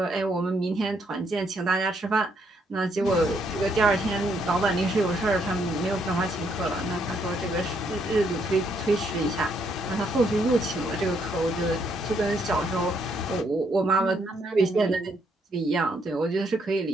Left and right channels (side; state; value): both; normal; correlation 0.73